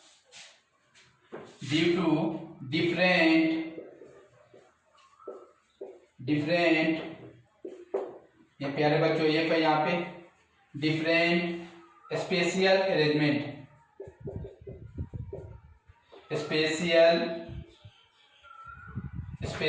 डिफरेंट, ये प्यारे बच्चों ये पे यहाँ पे डिफरेंट स्पेशियल अरेंजमेंट,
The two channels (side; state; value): both; identical; correlation 1.00